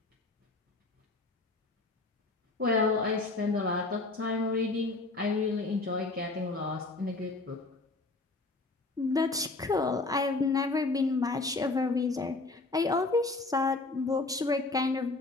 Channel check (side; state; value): right; quieter; 3.3 dB